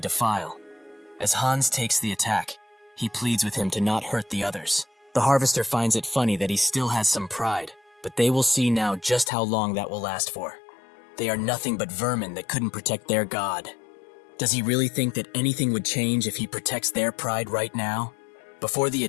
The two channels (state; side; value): drops out; right; at 9.3 s